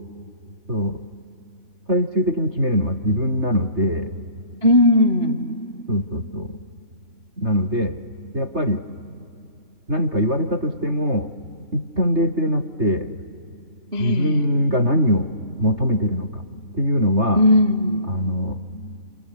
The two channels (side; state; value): left; late; 3.3 ms